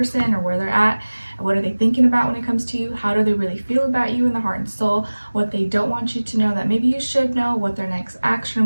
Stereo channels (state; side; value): inverted; both; correlation -1.00